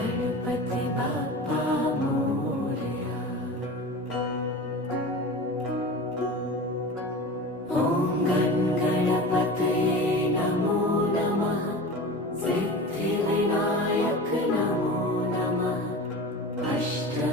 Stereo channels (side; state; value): both; normal; correlation 0.33